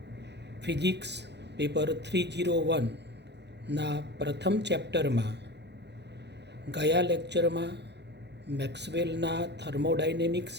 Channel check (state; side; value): late; left; 0.50 ms